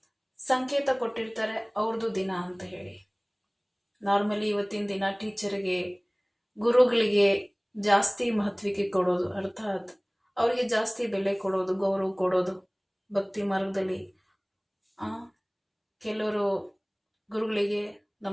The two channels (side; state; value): both; identical; correlation 1.00